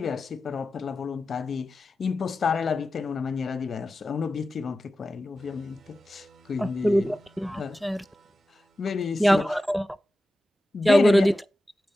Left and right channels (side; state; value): both; normal; correlation 0.94